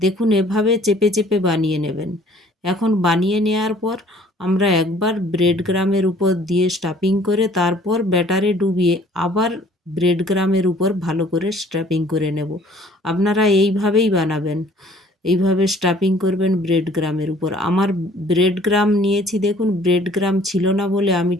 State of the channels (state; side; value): normal; both; correlation 0.56